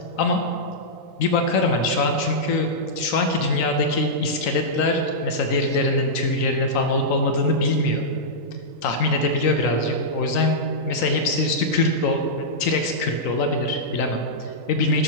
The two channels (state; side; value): late; right; 3.9 ms